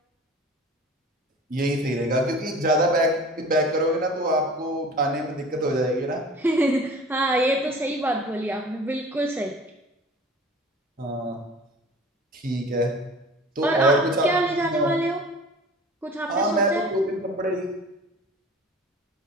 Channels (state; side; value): normal; both; correlation 0.42